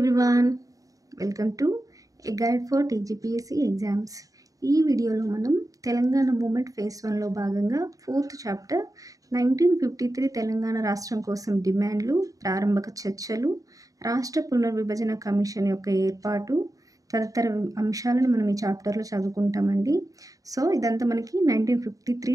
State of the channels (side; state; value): left; late; 0.17 ms